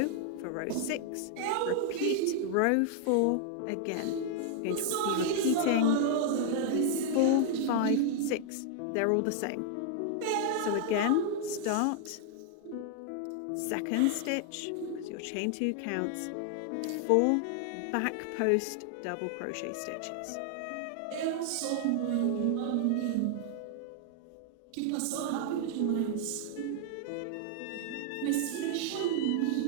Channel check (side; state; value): both; different; correlation 0.00